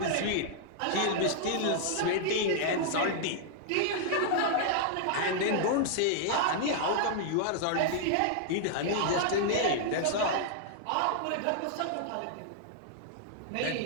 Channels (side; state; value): both; different; correlation -0.01